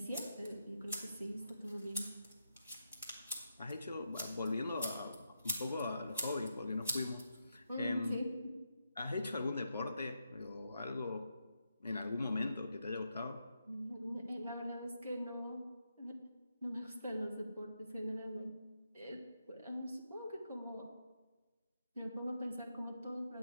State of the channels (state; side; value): inverted; both; correlation -0.84